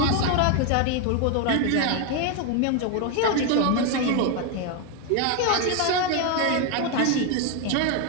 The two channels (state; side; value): different; both; correlation 0.01